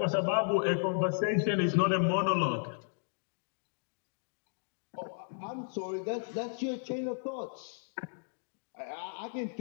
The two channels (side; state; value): right; silent; digital silence